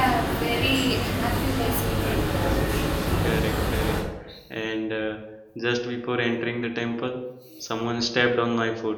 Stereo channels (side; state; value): both; identical; correlation 1.00